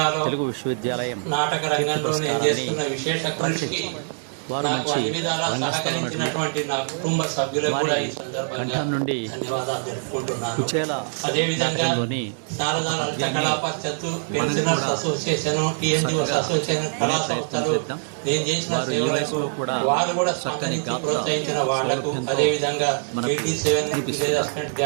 తెలుగు విశ్వవిద్యాలయం నాటక రంగంలో నేను చేస్తున్న విశేష కృషికి వారు మంచి సహకరించినటువంటి నా కుటుంబ సభ్యులకు కూడా ఈ సందర్భంగా నుండి ధన్యవాదాలు తెలుపుకుంటున్నాను. కుచేల అదేవిధంగా శారదా లలిత కళా పరిషత్తు, పెన్షనర్స్ అసోసియేషన్, టీఎన్జిఓస్ అసోసియేషన్, కళా సంస్థలు నేను చేసిన సేవలకు వారు కూడా సహకరించి ప్రోత్సహించిన వాళ్లకు, అదేవిధంగా 87 విలేజ్ అసిస్టెంట్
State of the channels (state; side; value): silent; left; digital silence